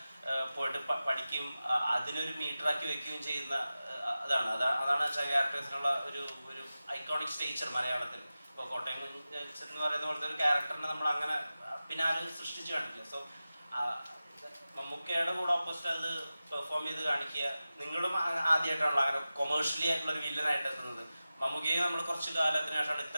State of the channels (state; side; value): inverted; both; correlation -0.95